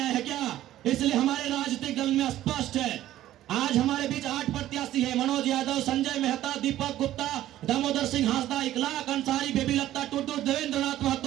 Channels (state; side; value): quieter; left; 13.6 dB